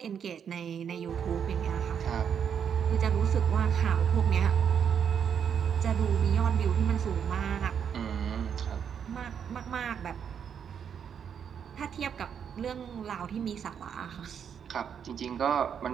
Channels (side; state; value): left; quieter; 7.8 dB